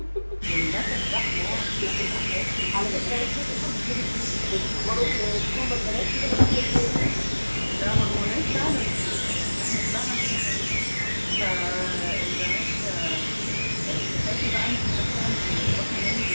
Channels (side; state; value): both; inverted; correlation -1.00